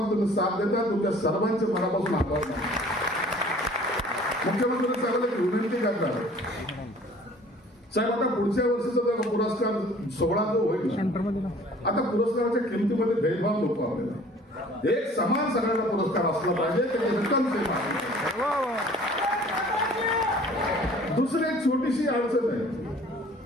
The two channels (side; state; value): both; normal; correlation 0.51